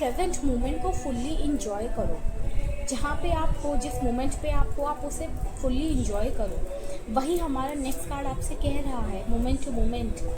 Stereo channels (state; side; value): identical; both; correlation 1.00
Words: मोमेंट को फुल्ली इंजॉय करो। जहाँ पे आप हो, जिस मोमेंट पे आप हो, आप उसे फुल्ली इंजॉय करो। वही हमारा नेक्स्ट कार्ड आपसे कह रहा है, मोमेंट टू मोमेंट।